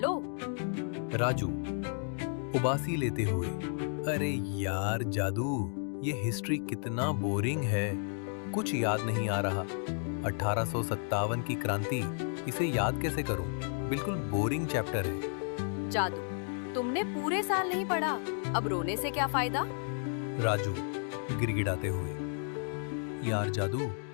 राजू उबासी लेते हुए, अरे यार जादू, ये हिस्ट्री कितना बोरिंग है, कुछ याद नहीं आ रहा। 1857 की क्रांति, इसे याद कैसे करूं? बिल्कुल बोरिंग चैप्टर है। जादू, तुमने पूरे साल नहीं पढ़ा, अब रोने से क्या फायदा? राजू गिड़गिड़ाते हुए, यार जादू,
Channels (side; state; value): right; silent; 56 dB below the other